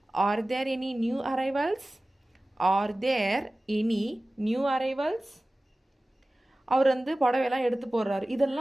Are there any new arrivals? Are there any new arrivals? அவர் வந்து புடவையெல்லாம் எடுத்து போடுறாரு.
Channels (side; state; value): both; normal; correlation 0.97